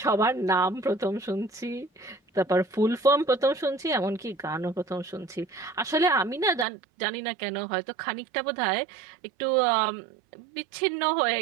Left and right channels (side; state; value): left; drops out; at 6.7 s